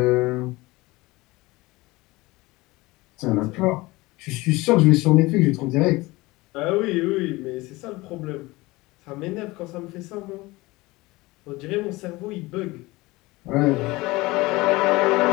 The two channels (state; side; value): quieter; right; 21.3 dB